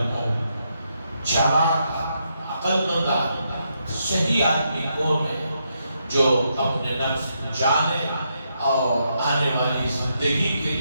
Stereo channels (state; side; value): inverted; both; correlation -0.79